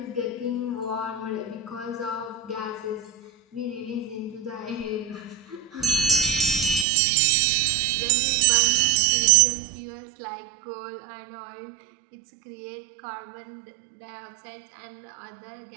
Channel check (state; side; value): drops out; left; at 6.9 s